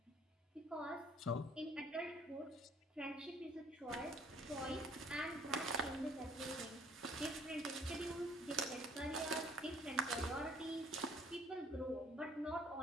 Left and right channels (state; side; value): normal; both; correlation 0.59